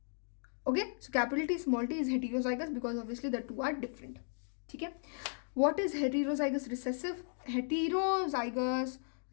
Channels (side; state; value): right; silent; digital silence